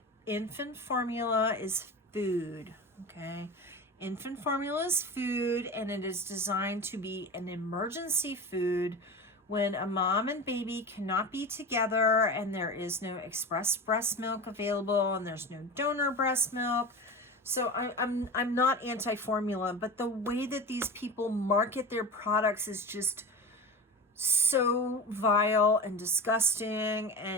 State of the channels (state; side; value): normal; both; correlation 0.29